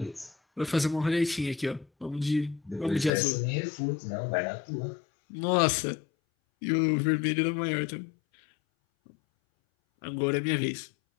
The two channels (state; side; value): drops out; right; at 3.1 s